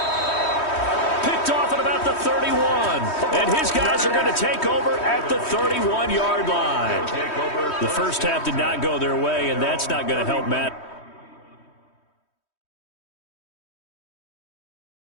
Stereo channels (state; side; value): late; right; 3.1 ms